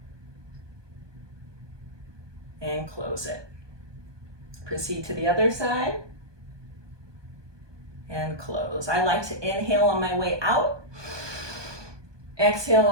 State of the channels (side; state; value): left; late; 1.2 ms